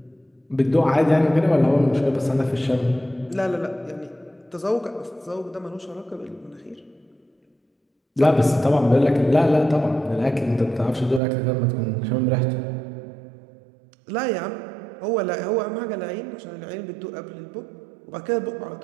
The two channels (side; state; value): left; drops out; at 11.2 s